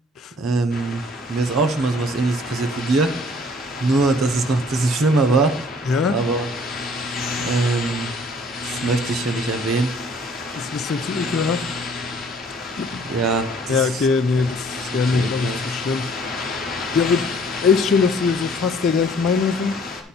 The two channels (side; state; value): both; normal; correlation 0.56